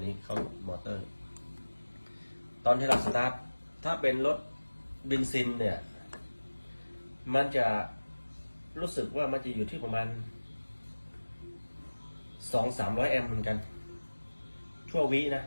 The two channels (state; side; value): inverted; both; correlation -1.00